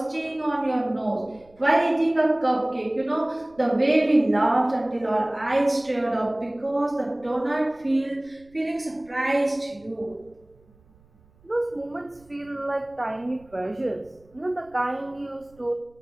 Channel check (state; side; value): noise; right; rumble, 30 dB below the sound